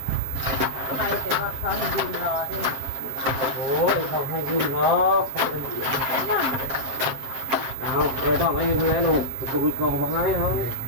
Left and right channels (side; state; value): left; late; 7.6 ms